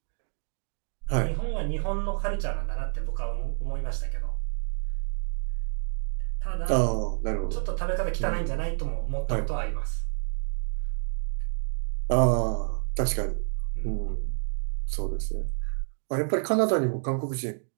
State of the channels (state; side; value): silent; left; digital silence